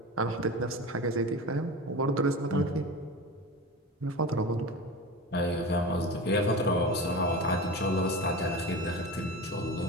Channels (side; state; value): both; normal; correlation 0.29